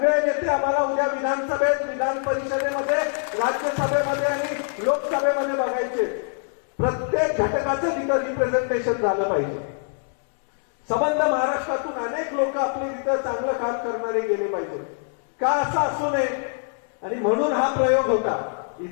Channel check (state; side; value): silent; right; 63 dB below the other